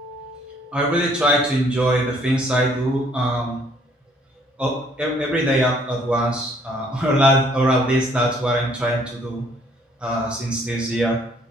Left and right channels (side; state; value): both; normal; correlation 0.62